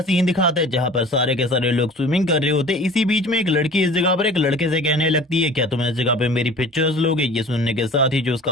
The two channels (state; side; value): normal; both; correlation 0.43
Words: सीन दिखाता है, जहां पर सारे के सारे लोग स्विमिंग कर रहे होते हैं। इसी बीच में एक लड़की इस जगह पर एक लड़के से कहने लगती है, क्या तुम इस जगह पे मेरी पिक्चर्स लोगे? ये सुनने के साथ ही जो